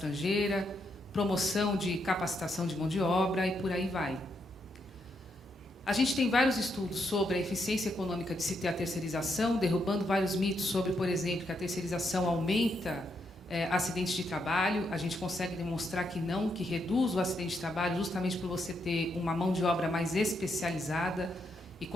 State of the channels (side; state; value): both; normal; correlation 0.79